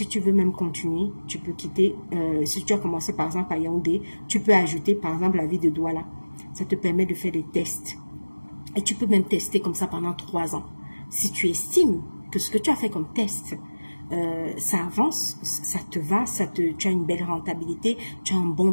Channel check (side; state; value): both; inverted; correlation -1.00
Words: tu veux même continuer, tu peux quitter, si tu as commencé par exemple à Yaoundé, tu peux ajouter par exemple la ville de Douala. Ça te permet de faire des tests. Et tu peux même tester comme ça pendant 3 ans. Si tu estimes que ce que tu as fait comme test, ça avance, ça te va, tu as une belle rentabilité, tu as un bon